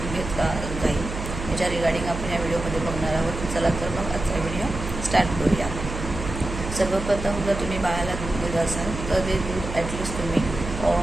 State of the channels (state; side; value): noise; right; hum, 7 dB below the sound